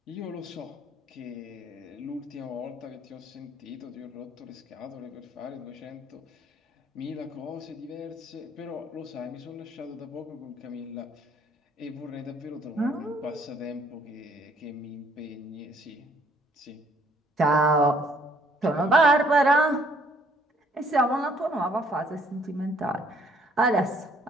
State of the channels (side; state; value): both; normal; correlation 0.63